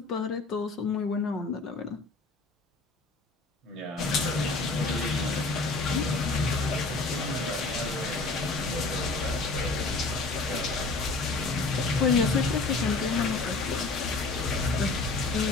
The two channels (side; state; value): right; quieter; 3.6 dB